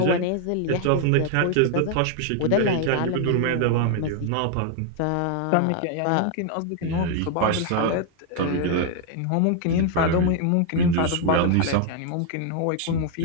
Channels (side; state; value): both; different; correlation 0.00